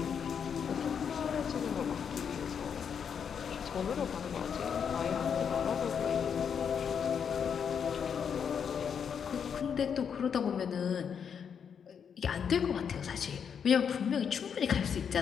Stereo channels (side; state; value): right; quieter; 7.3 dB